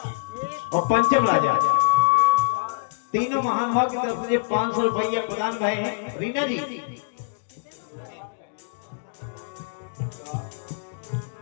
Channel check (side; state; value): right; silent; digital silence